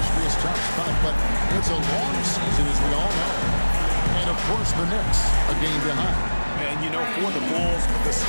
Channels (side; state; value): both; inverted; correlation -1.00